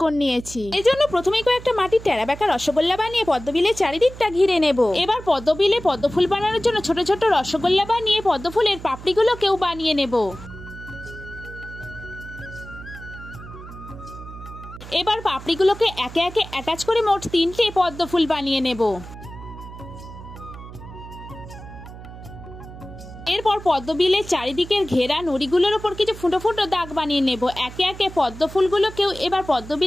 নিয়েছি। এই জন্য প্রথমেই কয়েকটা মাটির টেরা বেঁকা রসগোল্লা বানিয়ে পদ্মবিলের চারিদিকটা ঘিরে নেব। এবার পদ্মবিলে পদ্মফুল বানানোর জন্য ছোট ছোট রসগোল্লা বানিয়ে পদ্মফুলের পাপড়িগুলোকেও বানিয়ে নেব। এবার পাপড়িগুলোকে একে একে অ্যাটাচ করে মোট 3টে পদ্মফুল বানিয়ে নেব। এরপর পদ্মবিলের চারিদিকের ঘেরা নুড়িগুলোর উপর কিছু ফুটো ফুটো দাগ বানিয়ে নেব। একে একে পদ্মফুলগুলোকেও এবার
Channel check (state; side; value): noise; right; hum, 14 dB below the sound